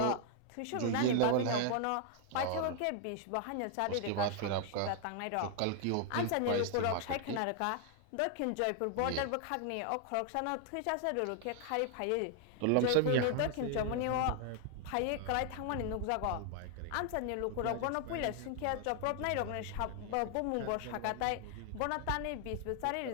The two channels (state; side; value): different; both; correlation 0.00